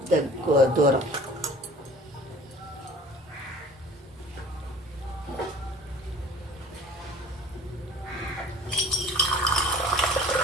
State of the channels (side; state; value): both; normal; correlation 0.47